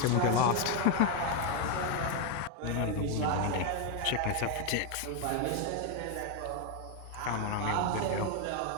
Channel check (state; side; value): different; both; correlation 0.01